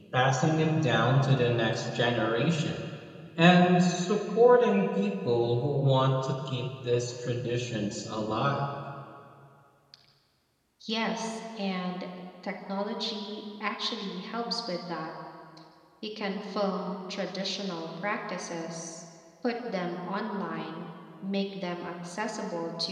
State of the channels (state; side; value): identical; both; correlation 1.00